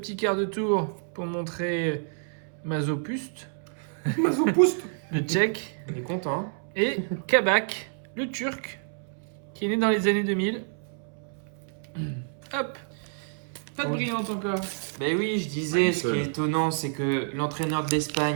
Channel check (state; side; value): silent; left; 59 dB below the other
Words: quart de tour pour montrer Mazopuste, Mazopoust. le tchèque, Il est content. Hein. et Kabak, le turc, qui est né dans les années 2000. Hop, pas de Oui. brillante encore. Ben oui, je disais, Ouais, ce qui est étonnant, c'est que l'entraîneur de